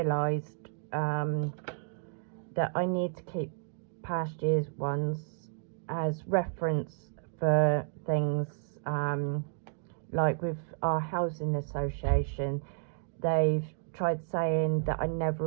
that I need to keep past year's ones as reference for things, like with our housing association, they've tried saying that I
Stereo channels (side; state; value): left; silent; digital silence